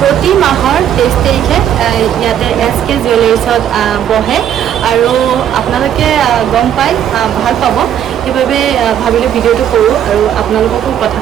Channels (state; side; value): quieter; left; 10.0 dB